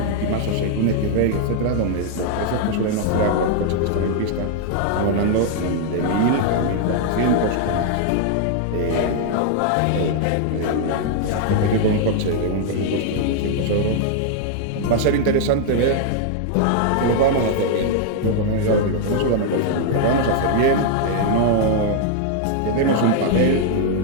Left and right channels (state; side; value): different; both; correlation 0.00